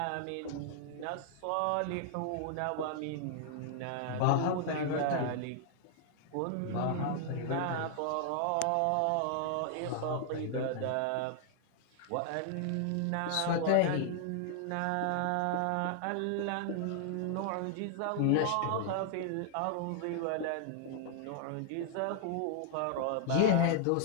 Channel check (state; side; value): different; both; correlation 0.00